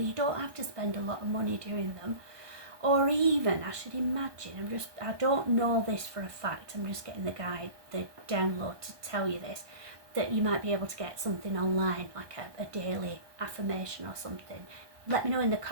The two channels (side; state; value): left; late; 1.2 ms